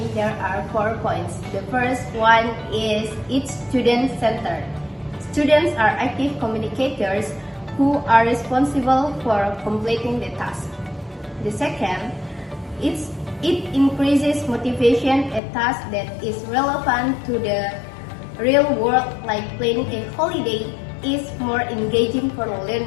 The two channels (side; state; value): right; drops out; at 15.4 s